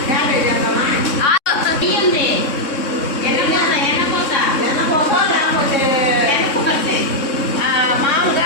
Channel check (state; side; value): late; right; 3.6 ms